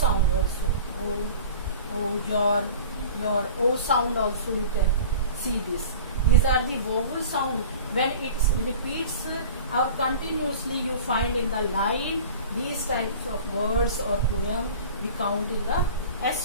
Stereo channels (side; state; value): both; inverted; correlation -0.40